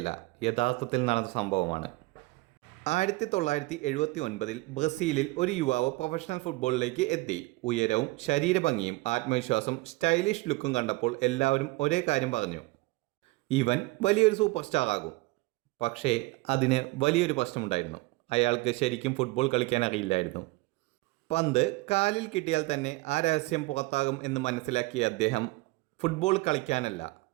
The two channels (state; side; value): quieter; left; 22.1 dB